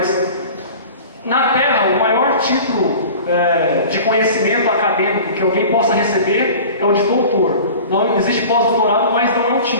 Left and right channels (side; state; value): both; inverted; correlation -0.40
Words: na Terra o maior título de conhecimento acadêmico que alguém possa receber é o de doutor. Não existe pós-doutorado, mas não é um